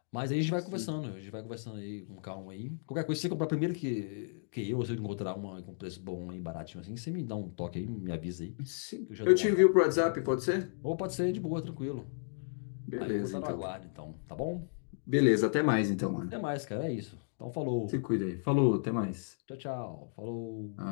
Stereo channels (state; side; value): silent; right; digital silence